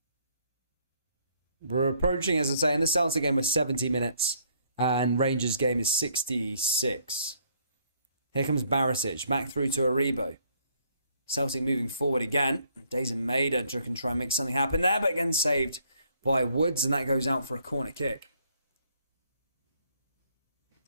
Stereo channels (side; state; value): both; inverted; correlation -0.66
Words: We're approaching, as I say, in the Celtic game was 70 minutes and Rangers game is 66. Here comes Barisic, back through to Aribo. Celtic moving forward again. Dazen Maida can try and make something happen there, but again saved by Woods, and that goes out for a corner kick.